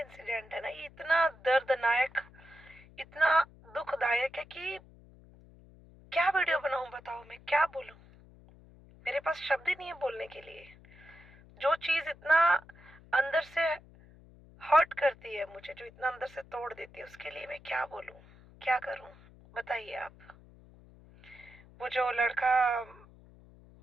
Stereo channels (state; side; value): noise; left; hum, 23 dB below the sound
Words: है ना, ये इतना दर्दनाक, इतना दुखदायक है कि क्या वीडियो बनाऊं, बताओ मैं क्या बोलूं। मेरे पास शब्द ही नहीं है बोलने के लिए। जो चीज इतना अंदर से हर्ट करती है मुझे, जो इतना अंदर से तोड़ देती है, उसके लिए मैं क्या बोलूं, क्या करूं, बताइए आप। वो जो लड़का